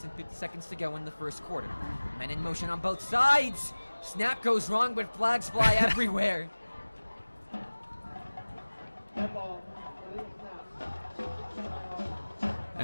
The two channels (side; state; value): both; inverted; correlation -1.00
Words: and 50 seconds to go in the first quarter. Men in motion on both sides. Snap goes wrong, but flags fly everywhere.